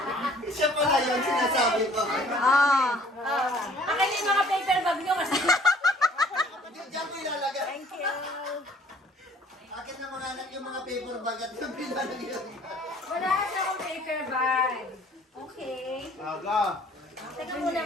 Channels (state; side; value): normal; both; correlation 0.56